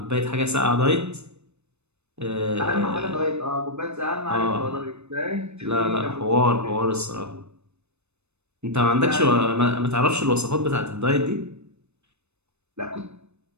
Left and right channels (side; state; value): left; late; 0.81 ms